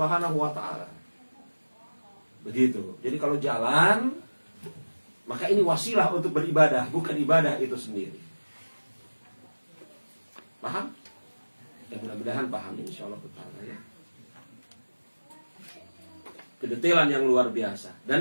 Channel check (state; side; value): inverted; both; correlation -1.00